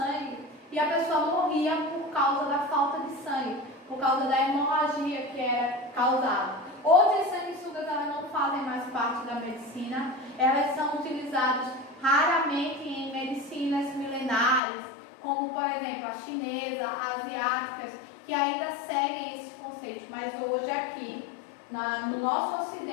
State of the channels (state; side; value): drops out; right; at 14.6 s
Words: e a pessoa morria por causa da falta de sangue. por causa da hemorragia que era causada. Hoje as sanguessugas elas não fazem mais parte da medicina, elas são utilizadas raramente em medicinas milenares, como por exemplo a chinesa, asiáticas, que ainda seguem esses conceitos, mas hoje aqui, no nosso